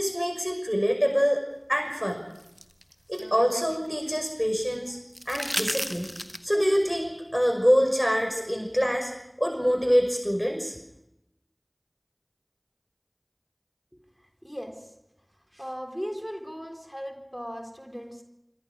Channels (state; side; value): identical; both; correlation 1.00